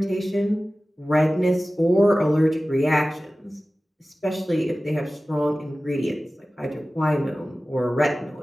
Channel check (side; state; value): both; normal; correlation 0.96